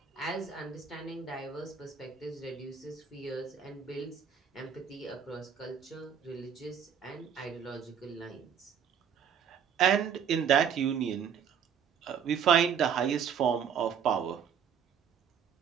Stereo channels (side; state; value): left; quieter; 7.7 dB